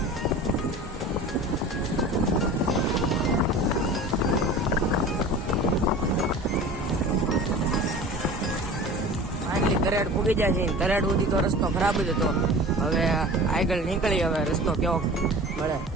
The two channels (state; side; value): normal; both; correlation 0.38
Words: તરેડ પૂગી જાય છે. તરેડ સુધી તો રસ્તો ખરાબ જ હતો. હવે આગળ નીકળી, હવે રસ્તો કેવો મળે.